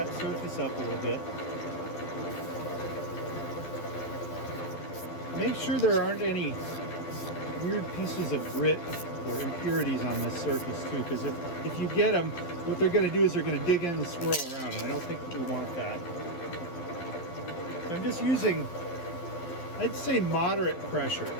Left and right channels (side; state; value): right; late; 12 ms